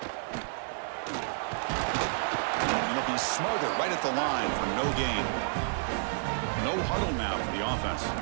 they'll be smothered right at the line for no gain. No huddle now for the offense.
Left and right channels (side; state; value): left; silent; 58 dB below the other